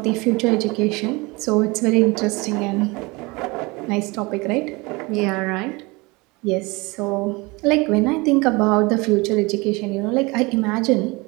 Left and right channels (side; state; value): left; quieter; 24.9 dB